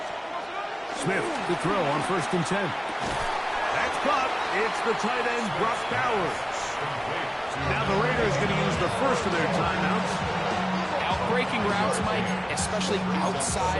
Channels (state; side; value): identical; both; correlation 1.00